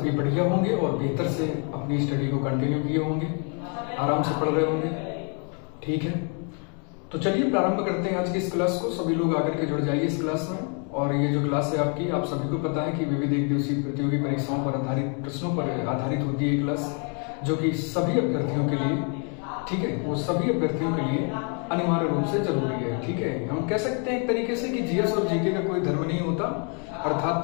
बढ़िया होंगे और बेहतर से अपनी स्टडी को कंटिन्यू किए होंगे, आराम से पढ़ रहे होंगे। ठीक है, तो चलिए प्रारंभ करते हैं आज की इस क्लास को। सभी लोग आकर के जुड़ जाइए इस क्लास में। और ये जो क्लास है आपकी, आप सभी को पता है कि विविध एक दिवसीय प्रतियोगी परीक्षाओं पर आधारित प्रश्नों पर आधारित होती है क्लास, जो कि सभी अभ्यर्थियों के लिए, ठीक है, वो सभी अभ्यर्थियों के लिए अनिवार्य रूप से जरूरी है। ठीक है, हम कह सकते हैं एक तरीके से कि जीएस और जीके का कोई धर्म नहीं होता। अर्थात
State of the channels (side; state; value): right; quieter; 38.9 dB